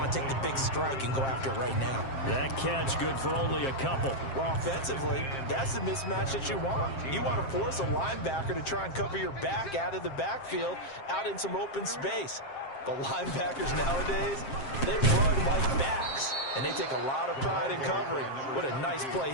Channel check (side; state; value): right; late; 7.5 ms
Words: to take the big strike and go after it right now? That catch good for only a couple. Well, offensively, that's the mismatch that you want. You want to force a linebacker to try and cover your back out of the backfield, out in some open space. The linebackers nowadays, They run like backs, and they take a lot of pride in covering. What a nice play